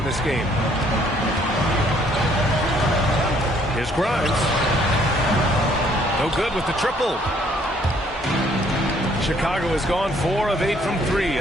this game. Here's Grimes. No good with the triple. Chicago has gone 4 of 8 from 3.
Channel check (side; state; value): both; normal; correlation 0.63